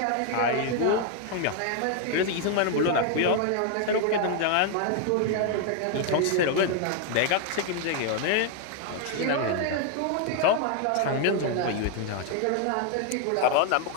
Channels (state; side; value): different; both; correlation 0.00